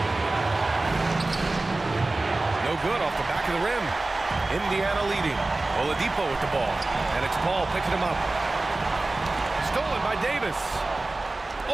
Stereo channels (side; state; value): left; quieter; 3.0 dB